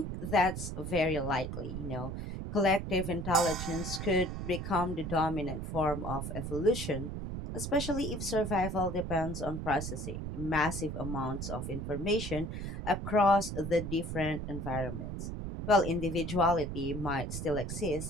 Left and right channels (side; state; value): right; noise; rumble, 5 dB below the sound